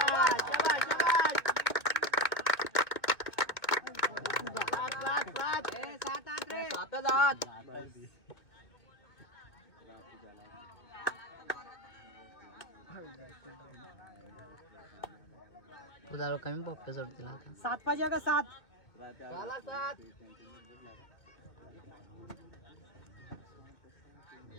उदाहरण कमी पप्पा सोडतील आता. 7 पाहिजे का 7?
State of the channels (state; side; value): late; right; 2.0 ms